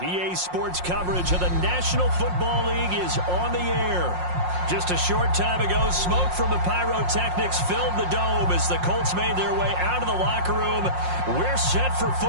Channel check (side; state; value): left; late; 5.6 ms